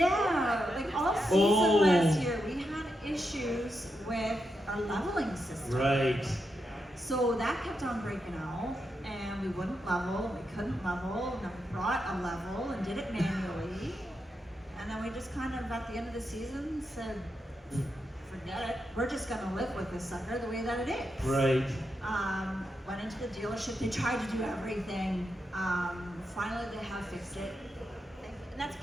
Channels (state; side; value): normal; both; correlation 0.85